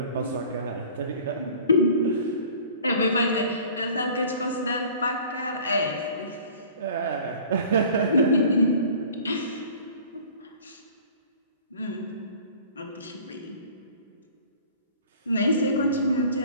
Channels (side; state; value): both; inverted; correlation -0.47